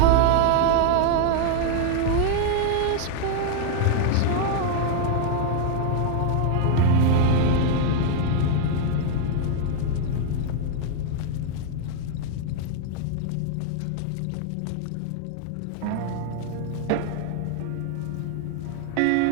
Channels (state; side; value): different; both; correlation 0.00